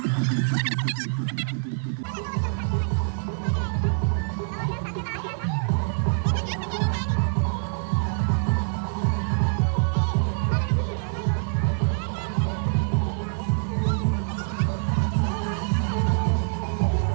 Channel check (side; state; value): left; silent; 62 dB below the other